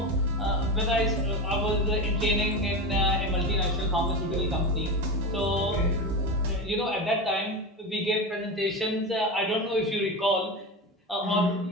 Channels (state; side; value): normal; both; correlation 0.22